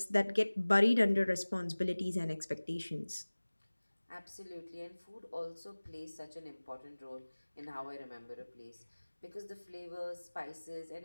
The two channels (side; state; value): both; inverted; correlation -1.00